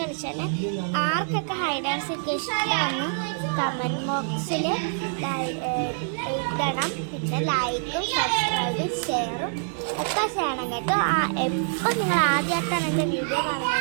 ആർക്കൊക്കെ ഹൈഡ് ആൻഡ് സീക്ക് ഇഷ്ടമാണ് കമൻറ്റ് ബോക്സിൽ ഇടണം. പിന്നെ ലൈക്കും സബ്സ്ക്രൈബും ഷെയറും ഒക്കെ ചെയ്യണം കേട്ടോ. എപ്പോൾ നിങ്ങൾ ആദ്യമായിട്ടാണ് എൻ്റെ വീഡിയോ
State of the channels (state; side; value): silent; left; digital silence